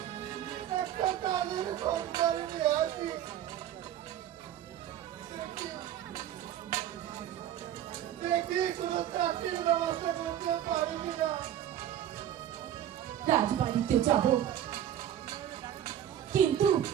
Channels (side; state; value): left; quieter; 11.0 dB